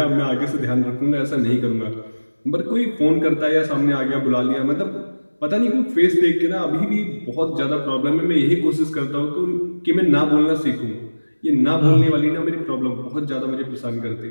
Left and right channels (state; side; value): inverted; both; correlation -1.00